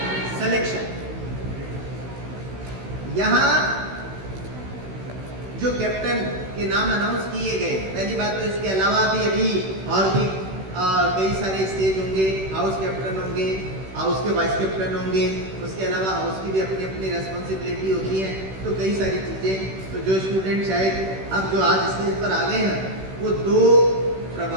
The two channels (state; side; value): late; left; 16 ms